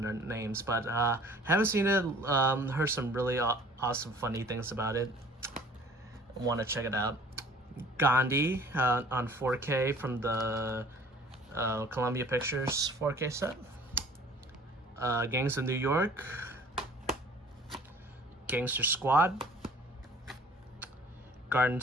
their names, but haven't seen it. Heard some really awesome, funny things about it. Want to check it out. Gandhi on 4K from the Columbia Pictures 4K set. Gangs of New York. Gangster Squad. Garden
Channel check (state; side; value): normal; both; correlation 0.51